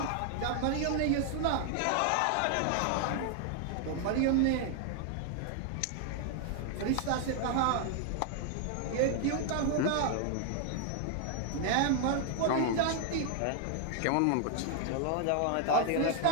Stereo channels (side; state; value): both; different; correlation 0.00